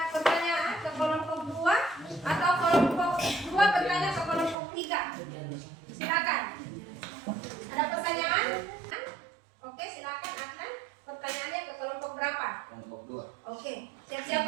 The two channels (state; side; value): drops out; left; at 4.5 s